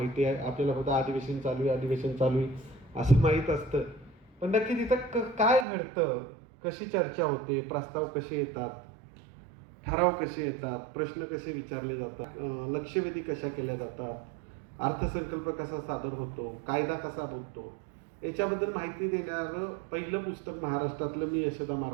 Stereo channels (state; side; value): drops out; left; at 5.7 s